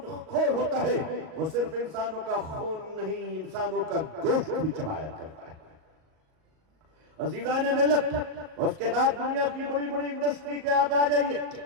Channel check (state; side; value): late; left; 38 ms